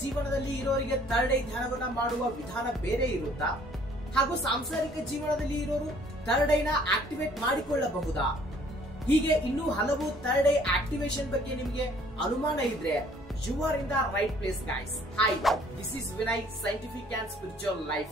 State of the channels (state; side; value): normal; both; correlation 0.58